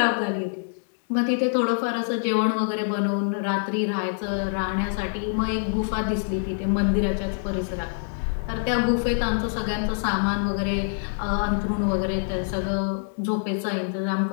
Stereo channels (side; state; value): right; silent; 62 dB below the other